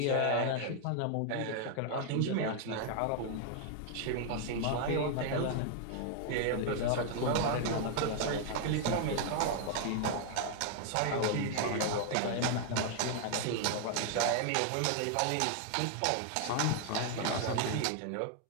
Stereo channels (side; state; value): both; different; correlation 0.00